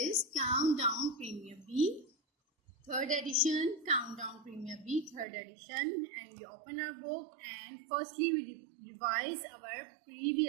Countdown Premier B, 3rd edition. Countdown Premier B, 3rd edition. And we open our book, and firstly we revise our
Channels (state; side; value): drops out; left; at 5.2 s